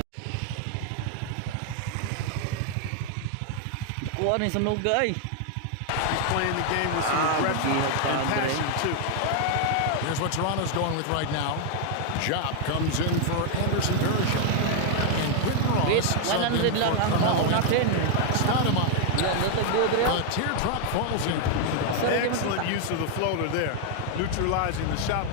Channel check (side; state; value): both; different; correlation 0.00